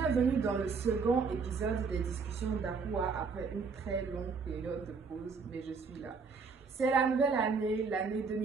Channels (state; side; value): quieter; left; 5.0 dB